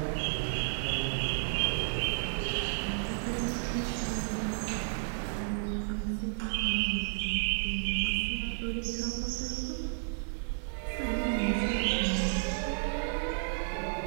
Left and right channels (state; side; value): silent; left; 56 dB below the other